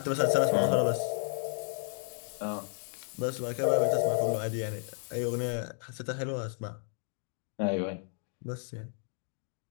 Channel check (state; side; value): silent; right; 56 dB below the other